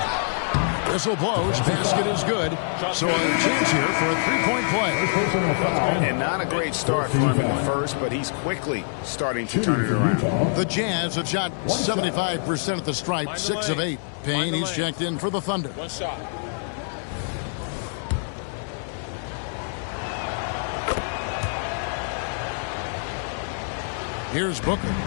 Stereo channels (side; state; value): right; silent; 60 dB below the other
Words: Whistle blows. Basket is good. So a chance here for a three-point play. And not a great start for him in the first, but he's quickly starting to turn it around. The Jazz have shot 75% at the stripe, 6 of 8. Payne, he's checked in for the Thunder. One shot. Here's Booker.